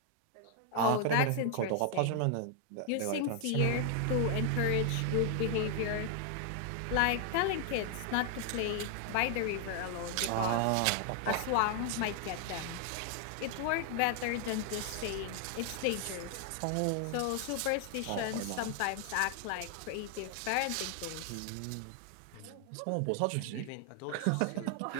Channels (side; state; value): both; different; correlation 0.00